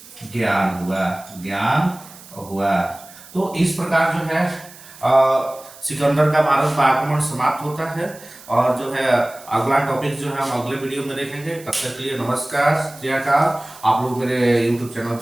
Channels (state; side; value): noise; right; hiss, 20 dB below the sound